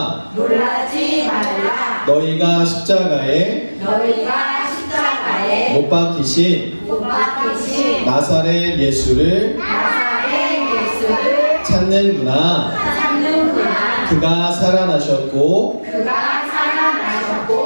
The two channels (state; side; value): inverted; both; correlation -1.00